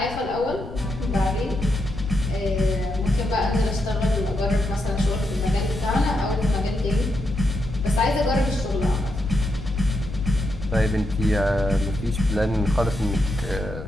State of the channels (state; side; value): noise; left; rumble, 11 dB below the sound